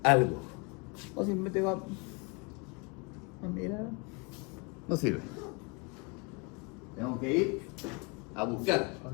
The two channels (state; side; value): quieter; right; 30.4 dB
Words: algo. O simplemente va a mirar. No sirve. Tengo que ir a buscar.